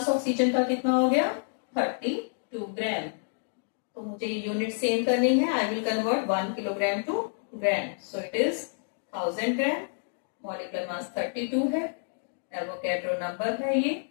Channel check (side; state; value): right; silent; digital silence